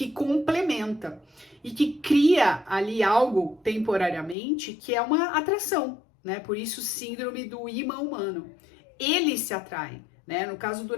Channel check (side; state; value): right; drops out; at 4.4 s